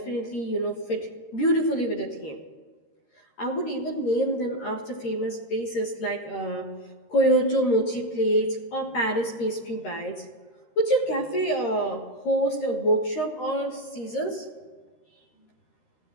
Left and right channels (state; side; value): late; right; 13 ms